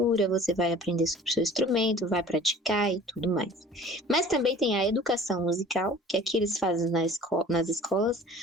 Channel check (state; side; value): normal; both; correlation 0.47